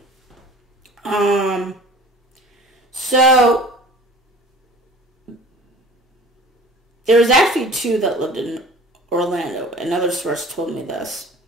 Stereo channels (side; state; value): both; normal; correlation 0.45